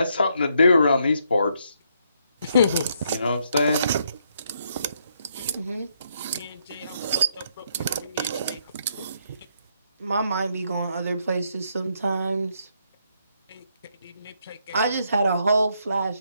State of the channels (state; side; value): inverted; both; correlation -0.75